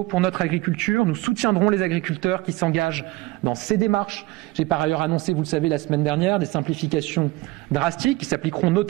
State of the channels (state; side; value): quieter; left; 19.7 dB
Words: pour notre agriculture. Nous soutiendrons les agriculteurs qui s'engagent dans ces démarches. J'ai par ailleurs annoncé, vous le savez, la semaine dernière, des simplifications drastiques qui s'appliqueront